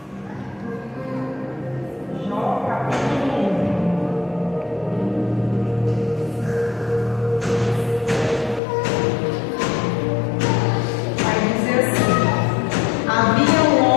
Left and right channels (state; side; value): drops out; right; at 8.6 s